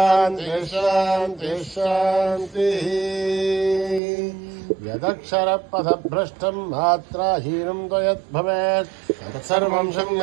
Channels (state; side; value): drops out; left; at 4.0 s